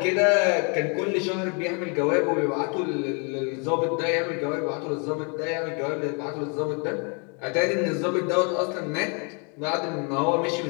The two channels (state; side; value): quieter; right; 36.1 dB